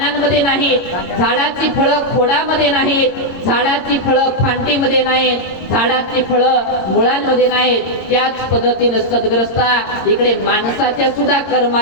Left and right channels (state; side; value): late; right; 22 ms